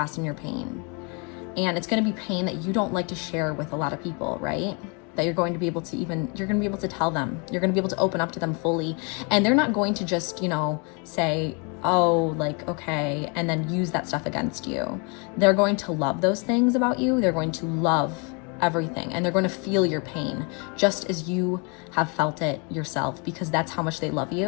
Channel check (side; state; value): right; quieter; 33.6 dB